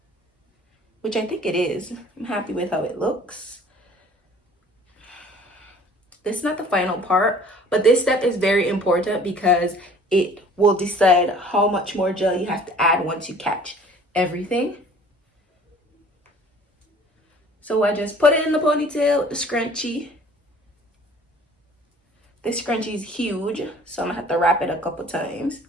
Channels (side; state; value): both; normal; correlation 0.51